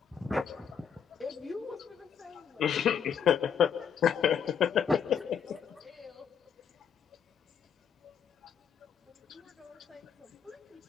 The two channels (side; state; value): right; quieter; 7.5 dB